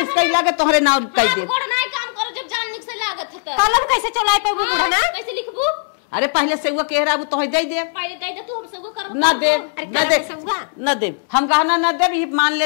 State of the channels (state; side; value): silent; right; digital silence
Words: लागे तोहरे नाम कह दे कोड नहीं काम करो जब जान निक से लागत है कलम कैसे चलाए पे बूढ़ा ना कैसे लिखबू अरे पहले से वो कह रहा वो तो दे दे पहले दे तू हम सब कर ना दे अरे कलम से हुआ न दे हम कहना न दे ये मान